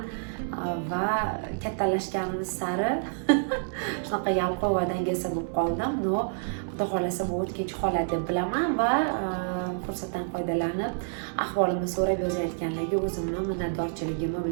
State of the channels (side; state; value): left; silent; digital silence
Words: va kattalashganimiz sari shunaqa yalqov va dangasa bo'lib qoldim. No, xudo xolasa bu o'tkinchi holat deb bilaman va fursatdan foydalanib ahvolimni so'rab yozayotganlarga o'zimni minnatdorchiligimni